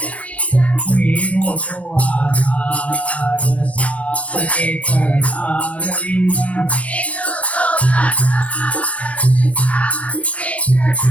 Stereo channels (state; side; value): late; right; 0.066 ms